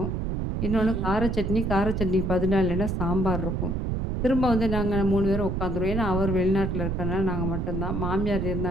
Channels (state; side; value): noise; right; rumble, 1 dB below the sound